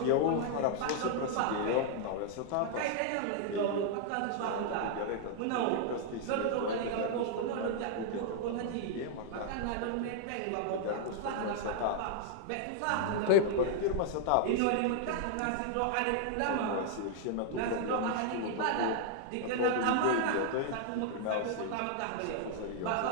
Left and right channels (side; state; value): both; different; correlation -0.01